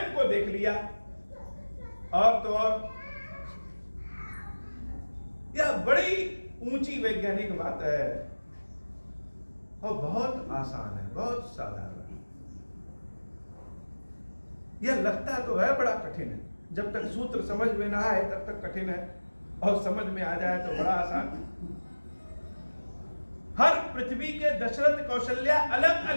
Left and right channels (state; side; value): inverted; both; correlation -1.00